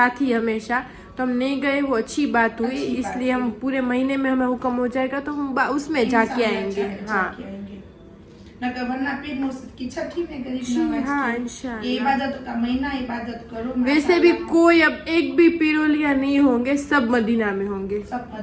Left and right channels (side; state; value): both; identical; correlation 1.00